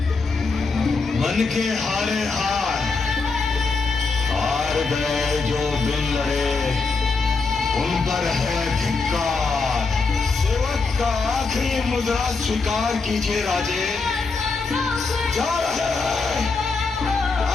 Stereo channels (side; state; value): right; quieter; 4.3 dB